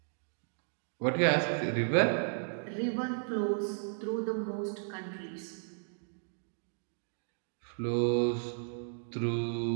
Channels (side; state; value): left; silent; digital silence